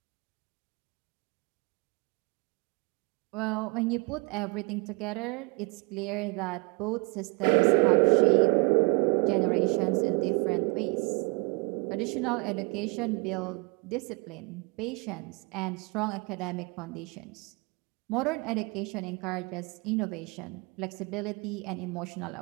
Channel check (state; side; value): quieter; left; 31.1 dB